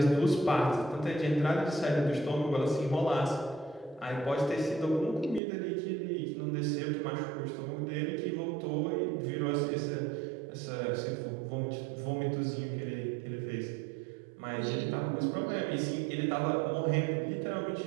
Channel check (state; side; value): drops out; left; at 5.4 s